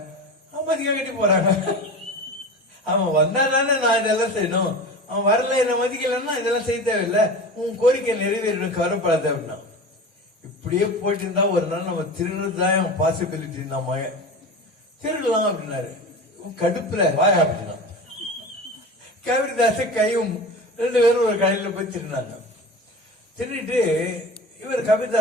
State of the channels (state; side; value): normal; both; correlation 0.31